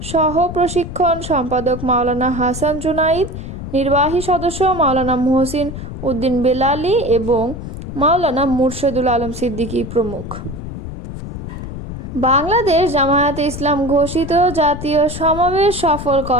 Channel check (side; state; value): left; noise; rumble, 9 dB below the sound